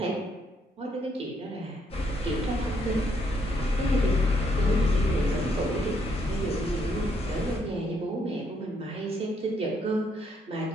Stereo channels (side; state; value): both; normal; correlation 0.72